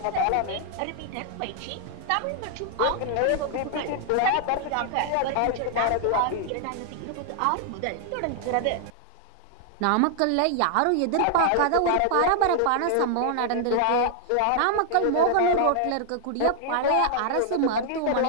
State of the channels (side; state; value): both; different; correlation 0.00